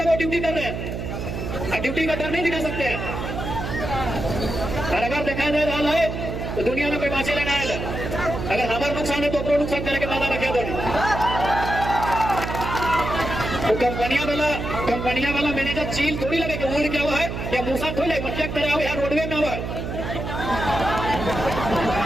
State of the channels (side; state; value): right; noise; hum, 5 dB below the sound